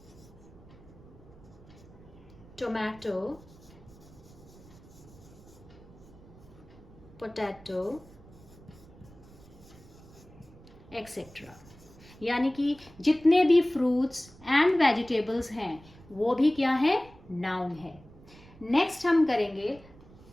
tomato, potato, etc. यानी कि जितने भी फ्रूट्स एंड वेजिटेबल्स हैं वो भी क्या है, नाउन है। नेक्स्ट हम करेंगे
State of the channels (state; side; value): noise; right; rumble, 22 dB below the sound